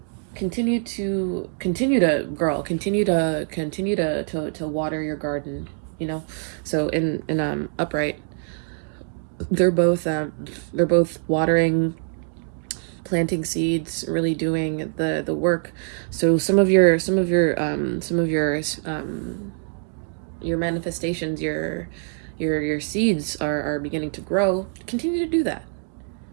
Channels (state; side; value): silent; left; 58 dB below the other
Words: Continue to water your garden, you know. So in upright, they're both watering planting seeds, really doing the work. So your manifestations, your seeds are beginning to grow. Continue to do that.